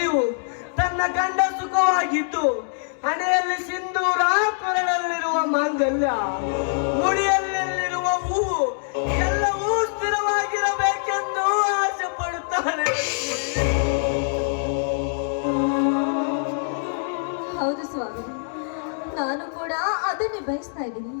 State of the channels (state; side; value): silent; right; digital silence